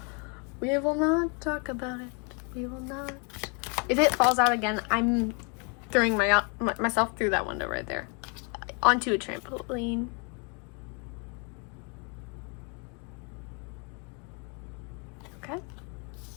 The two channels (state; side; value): quieter; right; 35.6 dB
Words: We will not talk about it. We will not. If it falls out again, I'm throwing myself through that window right there. Onto a trampoline. Okay.